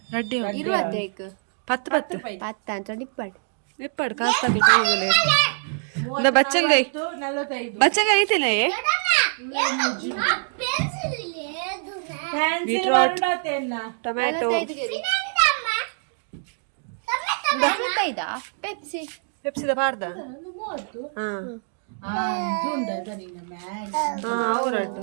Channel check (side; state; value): left; silent; digital silence